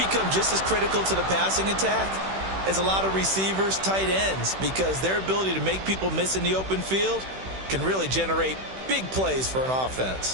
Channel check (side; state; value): left; late; 16 ms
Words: just as critical to the passing attack as a lot of receivers, tight ends, because their ability to make people miss in the open field can really generate big plays for an